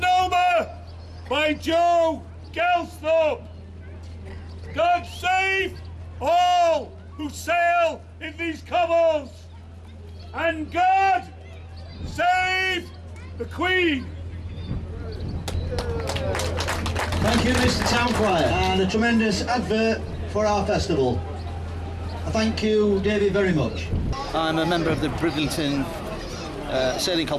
by Joe Gelsthorpe. God save all who sail in these cobbles, and God save the Queen. Thank you, Mr. Town Crier, and a tremendous advert for our festival. Thank you, David, very much. I'm a member of the Bridlington Sailing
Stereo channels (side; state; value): both; identical; correlation 1.00